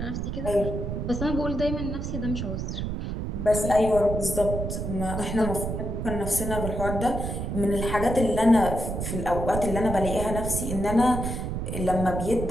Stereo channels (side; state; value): right; noise; rumble, 3 dB below the sound